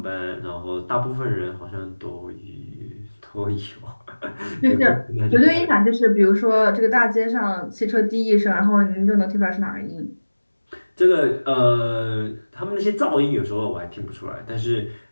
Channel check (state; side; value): inverted; both; correlation -1.00